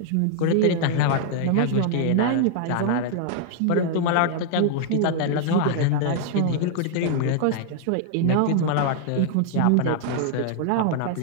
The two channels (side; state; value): both; different; correlation 0.00